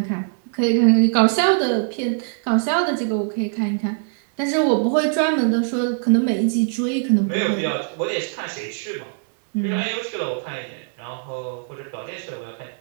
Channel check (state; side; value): silent; left; digital silence